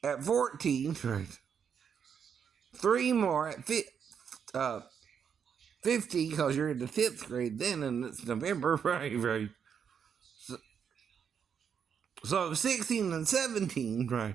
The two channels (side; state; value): left; quieter; 7.3 dB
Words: At 14, right? 3 more at 15, because you're in the 5th grade then, and it's November, right? Right. So 16 and 17,